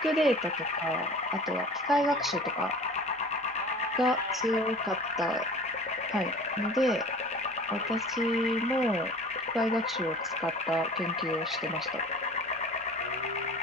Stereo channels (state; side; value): normal; both; correlation 0.42